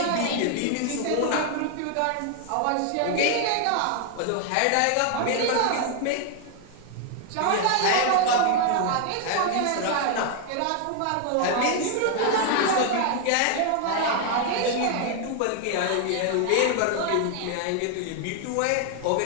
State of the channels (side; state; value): both; different; correlation 0.00